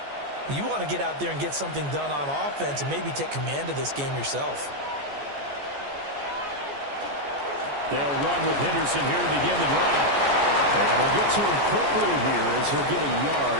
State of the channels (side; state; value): left; late; 14 ms